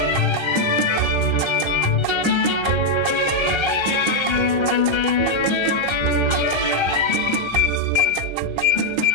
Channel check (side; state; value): right; late; 1.3 ms